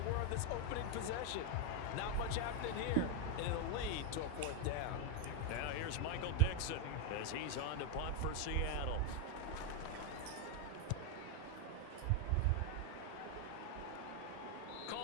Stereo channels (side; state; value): both; different; correlation 0.01